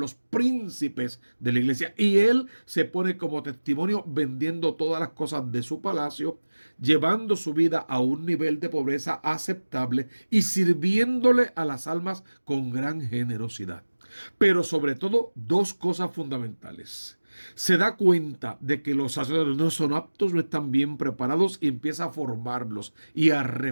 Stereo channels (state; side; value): inverted; both; correlation -1.00